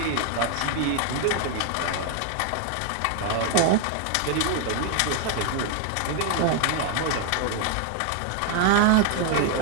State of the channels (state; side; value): different; both; correlation 0.00